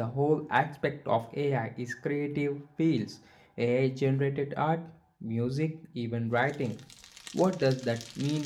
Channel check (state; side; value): identical; both; correlation 1.00